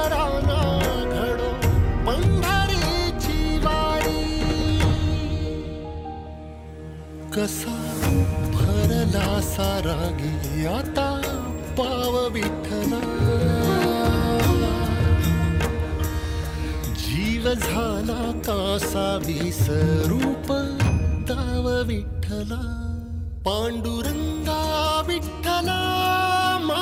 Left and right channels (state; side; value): identical; both; correlation 1.00